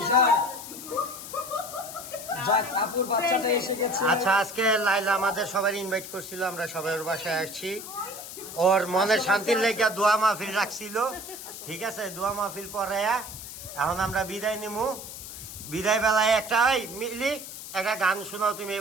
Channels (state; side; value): noise; left; hiss, 11 dB below the sound